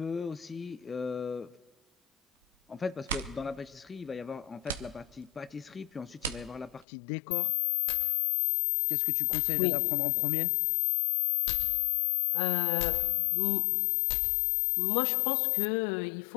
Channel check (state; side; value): drops out; right; at 6.9 s